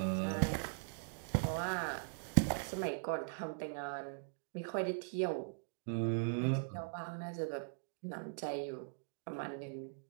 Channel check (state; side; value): silent; left; digital silence